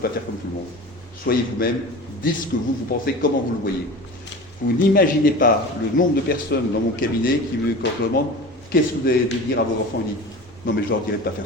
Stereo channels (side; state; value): both; normal; correlation 0.35